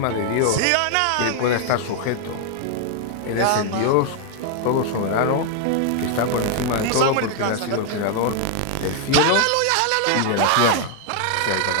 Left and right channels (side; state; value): both; different; correlation 0.00